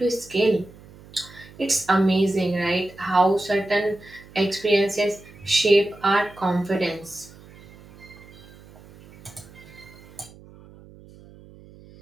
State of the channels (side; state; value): right; noise; hum, 22 dB below the sound